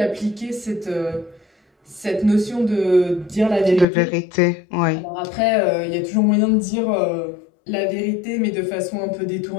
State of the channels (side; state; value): right; drops out; at 3.9 s